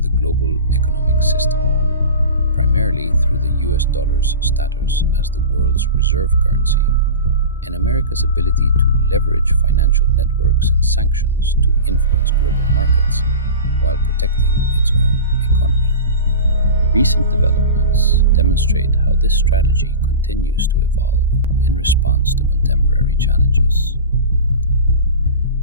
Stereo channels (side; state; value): both; inverted; correlation -0.31